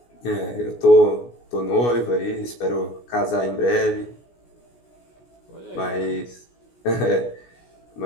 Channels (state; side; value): late; right; 17 ms